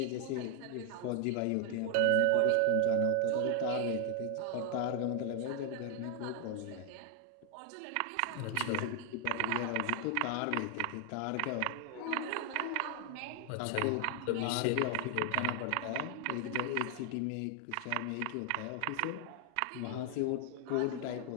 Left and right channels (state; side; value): different; both; correlation 0.00